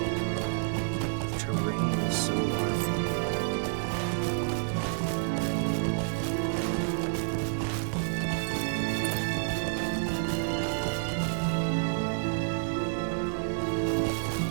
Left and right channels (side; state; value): left; silent; digital silence